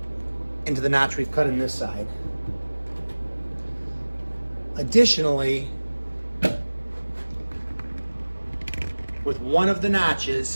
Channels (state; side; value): inverted; both; correlation -1.00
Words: into the notch we've cut in this side. Additionally, with one of the